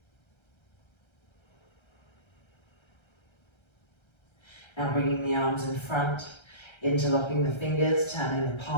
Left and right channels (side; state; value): right; late; 1.3 ms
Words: Now bringing the arms in front, interlocking the fingers, turning the